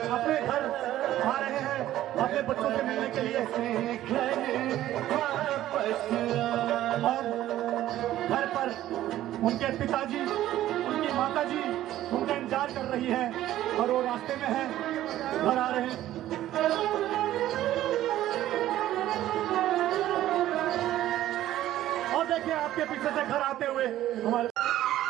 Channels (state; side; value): quieter; left; 13.6 dB